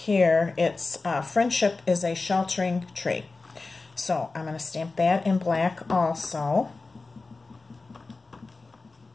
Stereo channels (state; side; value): quieter; right; 3.7 dB